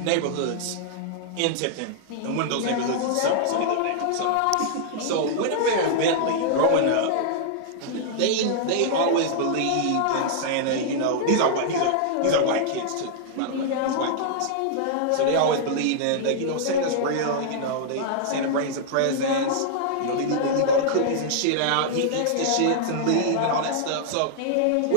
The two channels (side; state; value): both; different; correlation -0.01